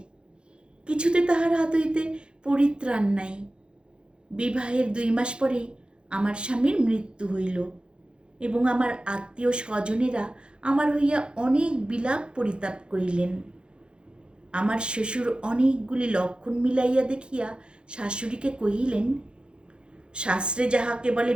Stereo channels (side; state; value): left; late; 0.053 ms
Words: কিছুতে তাহার হাত হইতে পরিত্রাণ নাই। বিবাহের 2 মাস পরেই আমার স্বামীর মৃত্যু হইল এবং আমার আত্মীয় স্বজনেরা আমার হইয়া অনেক বিলাপ পরিতাপ করিলেন। আমার শ্বশুর অনেকগুলি লক্ষণ মিলাইয়া দেখিয়া শাশুড়িকে কহিলেন, শাস্ত্রে যাহাকে বলে